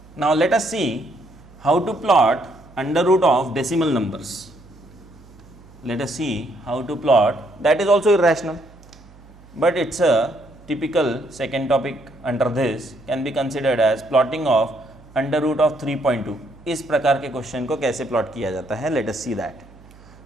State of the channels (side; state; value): right; noise; hum, 23 dB below the sound